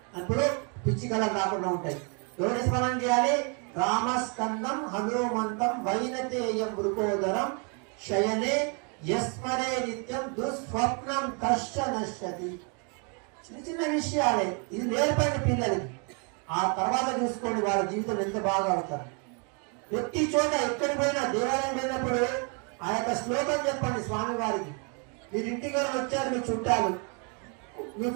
అప్పుడు పిచ్చి కళలు రాకుండా ఉంటాయి. ఎవరి స్మరణ చేయాలి? రామస్కందం హనుమంతం వైనతేయం వృకోదరం శయనే యస్మరే నిత్యం దుస్వప్నం కష్ట నశ్యతి. చిన్న చిన్న విషయాలే, ఇది నేర్పండి పిల్లలకి. ఆ తర్వాత చూసుకోండి వాళ్ళ జీవితం ఎంత బాగా అవుతారు. ప్రతి చోట ఎక్కడికి పోయినా దేవాలయం పోయినప్పుడు ఆ యొక్క శ్లోకం చెప్పండి స్వామి వారికి. మీరు ఇంటికి వచ్చారు, మీ చుట్టాలు,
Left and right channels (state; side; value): quieter; left; 36.6 dB